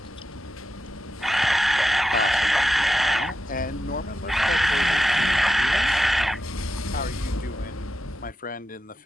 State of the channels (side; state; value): both; normal; correlation 0.89